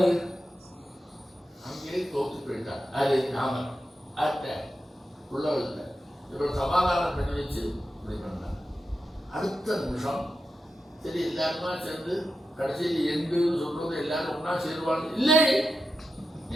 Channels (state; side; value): normal; both; correlation 0.90